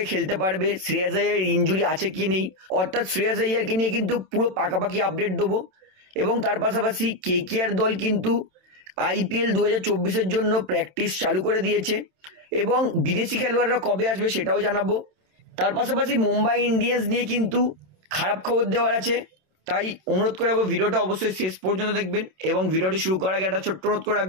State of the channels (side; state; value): left; late; 27 ms